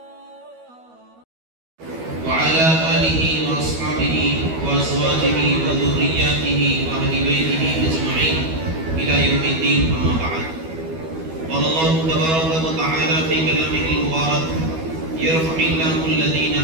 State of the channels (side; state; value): left; late; 12 ms